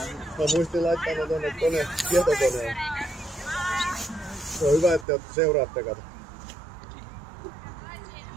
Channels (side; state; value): left; drops out; at 5.1 s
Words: Mä muistin laittaa ne tonne tietokoneen. Se on hyvä, että te seuraatte, kato.